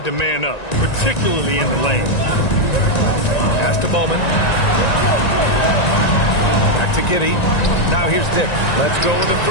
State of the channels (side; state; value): right; late; 1.9 ms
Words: to man up, particularly in the lane. Pass to Bowman. Back to Giddey. Now here's Dick. Let's go with a